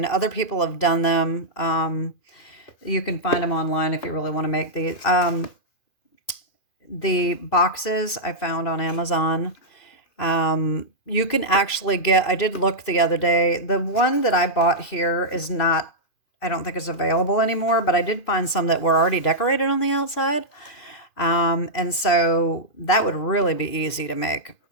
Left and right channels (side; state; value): right; late; 2.5 ms